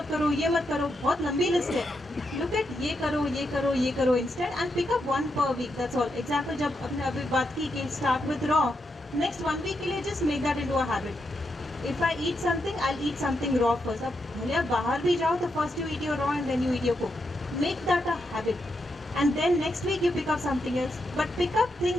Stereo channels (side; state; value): both; normal; correlation 0.83